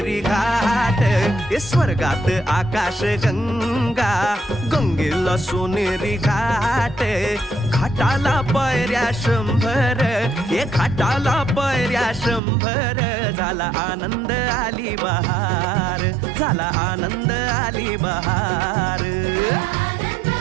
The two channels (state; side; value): drops out; left; at 12.4 s